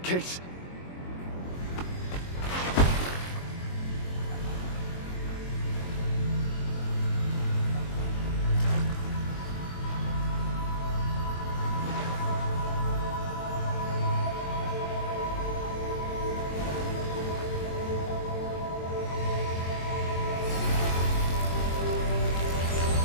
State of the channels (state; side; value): late; right; 22 ms